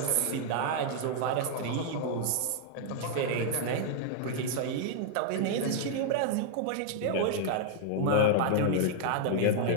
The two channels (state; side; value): different; both; correlation -0.01